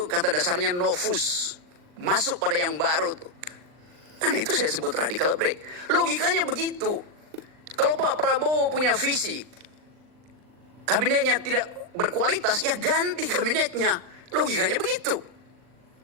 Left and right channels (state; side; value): late; left; 39 ms